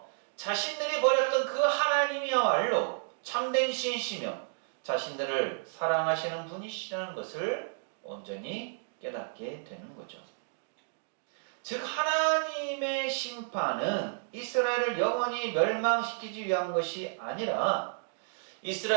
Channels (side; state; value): left; silent; digital silence